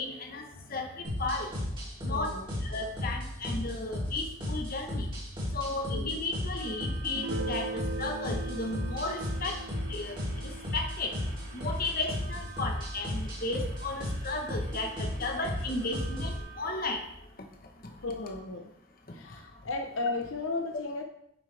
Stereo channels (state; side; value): normal; both; correlation 0.30